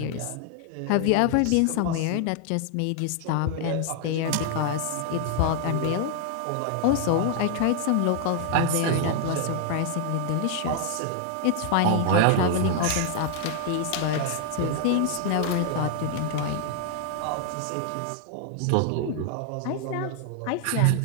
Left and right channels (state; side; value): different; both; correlation 0.00